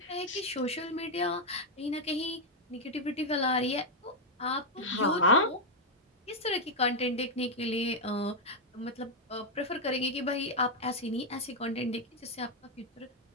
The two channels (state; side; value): normal; both; correlation 0.00